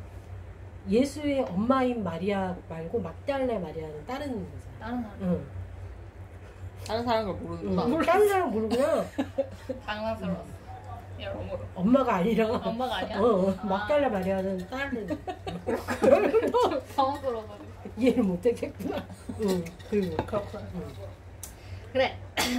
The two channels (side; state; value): both; identical; correlation 1.00